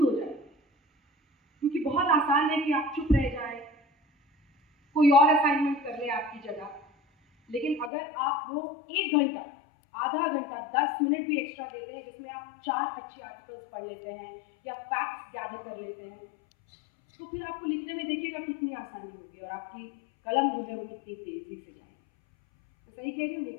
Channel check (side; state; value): right; drops out; at 7.9 s